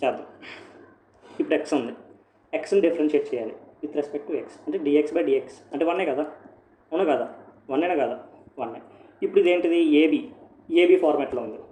చేద్దాం. ఇప్పుడు ఎక్స్ ఉంది, ఎక్స్ని డిఫరెన్షియేట్ చేయాలి విత్ రెస్పెక్ట్ టు ఎక్స్, అంటే dx/dx అంటే 1 కదా, అవునా కదా, 1 కదా, 1. ఇప్పుడు ఇదేంటిది, ఏబీ ఫార్మాట్లో ఉంది,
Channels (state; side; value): identical; both; correlation 1.00